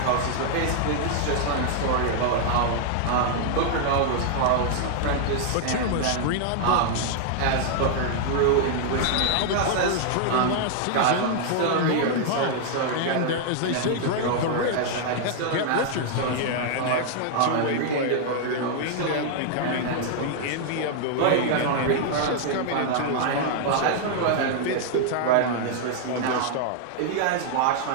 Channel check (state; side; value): different; both; correlation -0.01